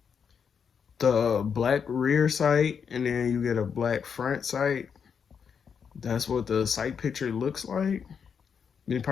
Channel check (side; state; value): right; quieter; 6.8 dB